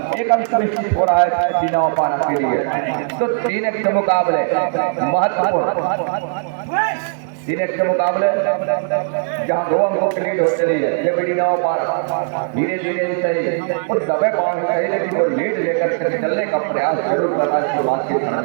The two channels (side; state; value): left; silent; 67 dB below the other